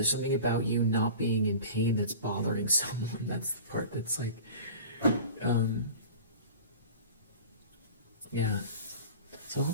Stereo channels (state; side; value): inverted; both; correlation -0.38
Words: something about you not being in pain that's bothering someone. That's the part that's like, yeah. So